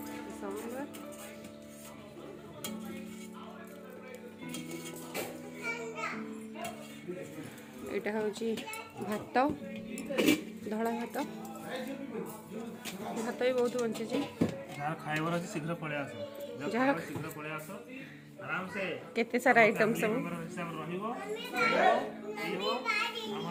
सांबर यहाँ हूँ भात धड़ा भात भात भी बहुत बंची खाइबार अछि शीघ्र पळे आसो जहाँ शीघ्र पळे आसो आराम से केते सारा आइटम सब रहिबो पीबो हम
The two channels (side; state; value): both; identical; correlation 1.00